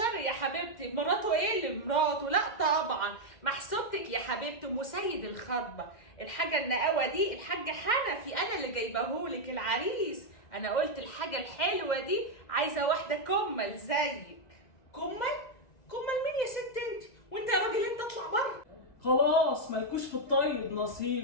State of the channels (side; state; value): right; late; 1.9 ms